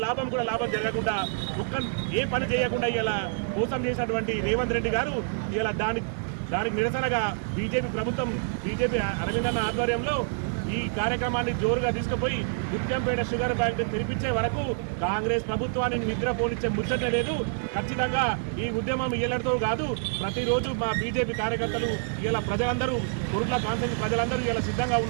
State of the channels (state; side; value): silent; left; digital silence